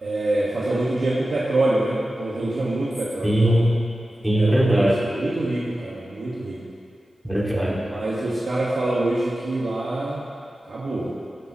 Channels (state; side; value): normal; both; correlation 0.94